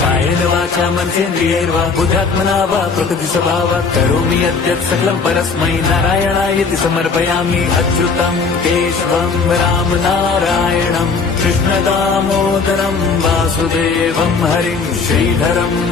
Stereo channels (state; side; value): quieter; right; 4.9 dB